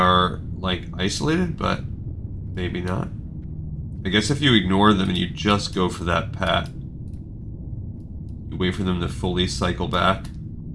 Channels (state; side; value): identical; both; correlation 1.00